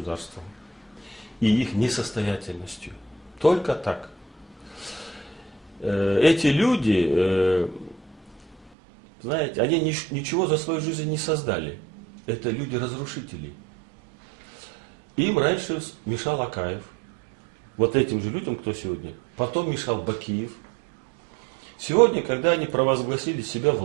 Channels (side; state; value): left; drops out; at 8.7 s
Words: и их несостоятельностью. Только так. Эти люди, знаете, они ничего за свою жизнь не создали. Это люди-разрушители. Им раньше мешал Акаев. Вот этим же людям, кто сегодня. Потом мешал Бакиев. Сегодня, когда они провозгласили себя